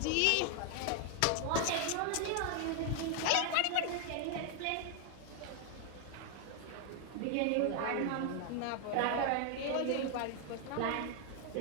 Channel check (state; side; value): different; both; correlation 0.00